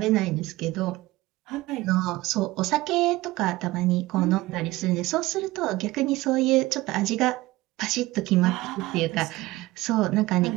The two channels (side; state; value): left; quieter; 18.9 dB